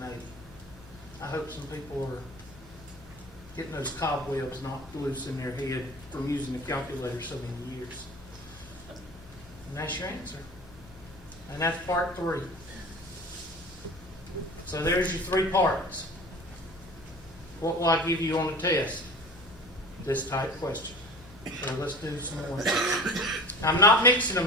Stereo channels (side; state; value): both; normal; correlation 0.39